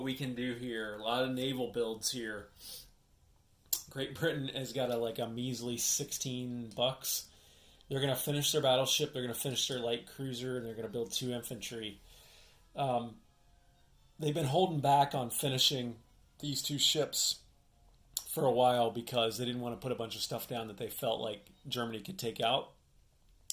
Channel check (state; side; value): identical; both; correlation 1.00